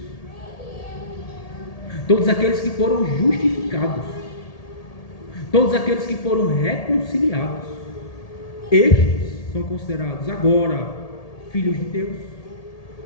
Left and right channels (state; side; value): late; right; 1.8 ms